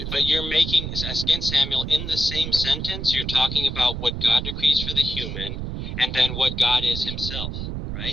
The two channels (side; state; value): right; noise; rumble, 5 dB below the sound